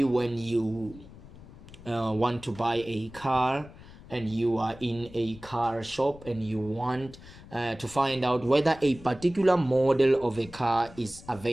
when you want to buy a car and you are in a car shop and you want to find out whether a particular model of a car is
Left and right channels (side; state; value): left; noise; rumble, 19 dB below the sound